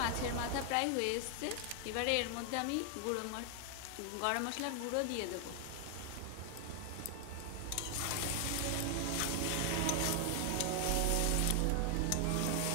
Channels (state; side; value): different; both; correlation 0.00